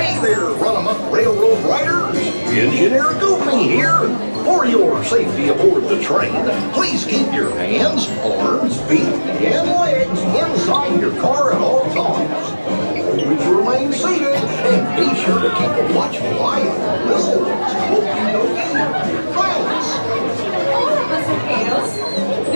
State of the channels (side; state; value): both; inverted; correlation -1.00